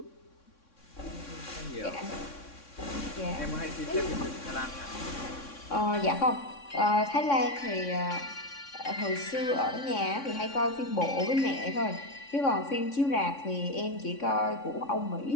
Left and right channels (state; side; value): late; right; 3.6 ms